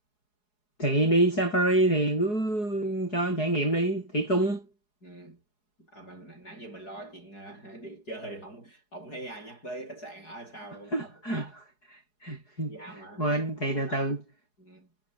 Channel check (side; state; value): right; late; 4.8 ms